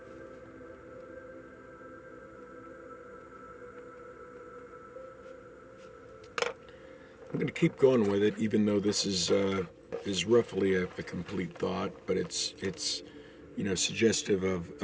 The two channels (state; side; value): identical; both; correlation 1.00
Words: I'm going to keep going with it, even though this is roughly a complete thought, but it's suggestive of